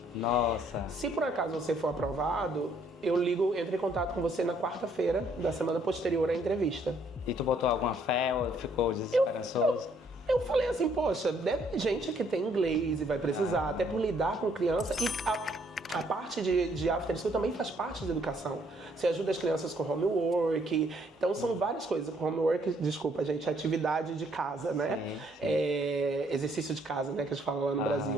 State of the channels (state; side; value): normal; both; correlation 0.66